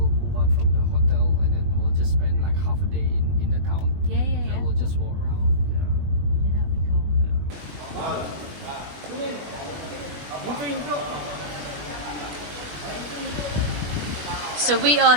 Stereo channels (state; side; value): late; left; 20 ms